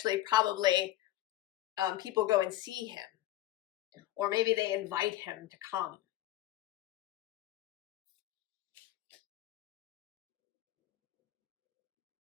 probably people go and see him, or maybe they invite him to come.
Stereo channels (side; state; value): right; quieter; 14.6 dB